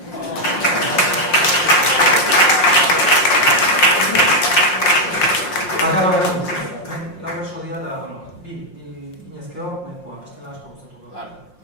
Lau berso dira eta, bi inezkeo, nahikoa, bestela asko gustatuko da.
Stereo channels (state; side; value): late; right; 5.6 ms